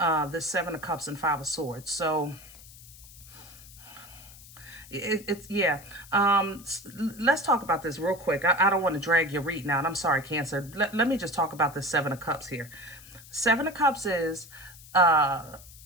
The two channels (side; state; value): left; noise; hiss, 19 dB below the sound